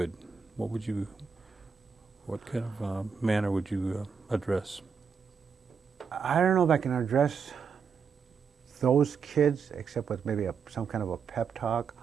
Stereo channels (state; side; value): quieter; left; 6.0 dB